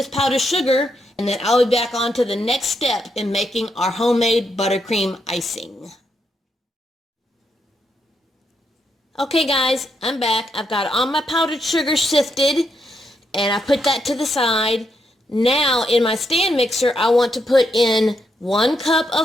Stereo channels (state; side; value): normal; both; correlation 0.80